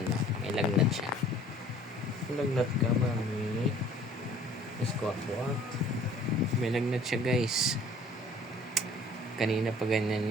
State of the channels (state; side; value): normal; both; correlation 0.52